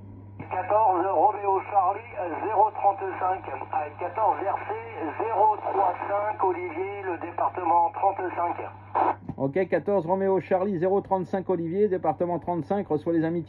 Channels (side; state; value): both; identical; correlation 1.00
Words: 14 Roméo Charlie 035 avec 14 RC 035 Olivier, le département 35. Ok, 14 Roméo Charlie 035 Olivier, département 35, reçoit les